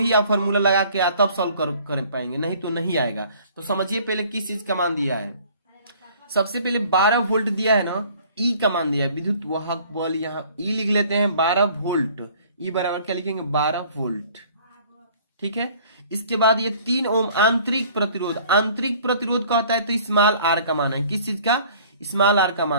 आप फॉर्मूला लगा के तब सॉल्व कर पाएंगे, नहीं तो नहीं आएगा। तो समझिए पहले किस चीज का मान दिया है। सबसे पहले 12 वोल्ट दिया है ना, ई का मान दिया है, विद्युत वाहक बल, यहाँ ई लिख लेते हैं 12 वोल्ट। ई बराबर क्या लिखेंगे, 12 वोल्ट। ठीक है, इसके बाद ये 3 ओम आंतरिक प्रतिरोध का होता है तो स्मॉल आर का मान है, किस चीज का, स्मॉल आर का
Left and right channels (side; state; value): both; inverted; correlation -0.53